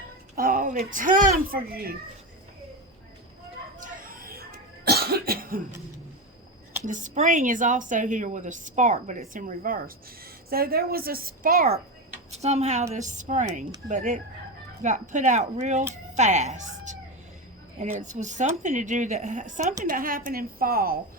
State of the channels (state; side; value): normal; both; correlation 0.17